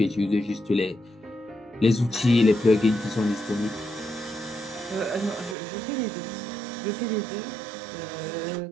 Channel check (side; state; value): left; drops out; at 5.6 s